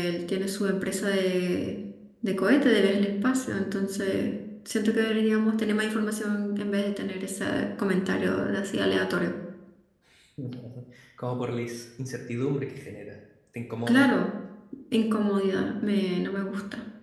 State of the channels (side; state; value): both; identical; correlation 1.00